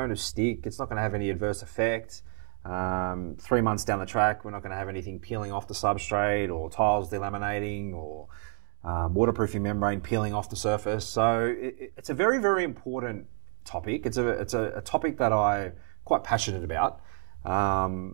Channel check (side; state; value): left; silent; 58 dB below the other